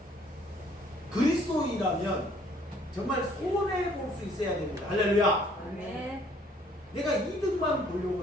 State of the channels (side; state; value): both; normal; correlation 0.60